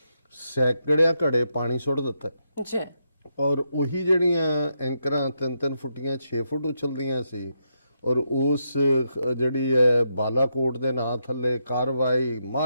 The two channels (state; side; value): inverted; both; correlation -0.82